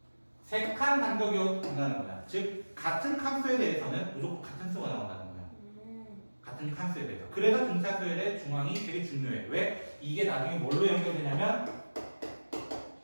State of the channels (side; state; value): both; inverted; correlation -1.00